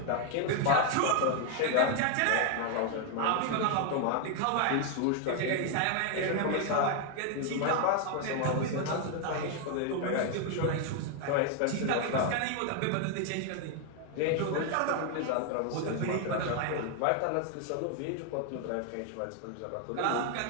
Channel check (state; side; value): different; both; correlation 0.00